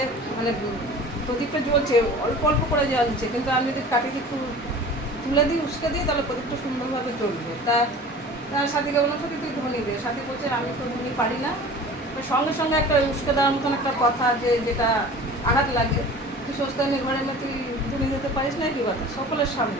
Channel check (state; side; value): normal; both; correlation 0.41